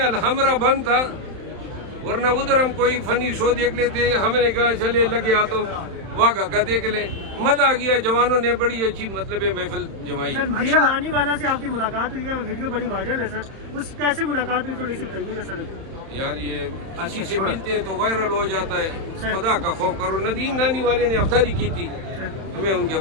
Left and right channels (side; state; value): left; late; 31 ms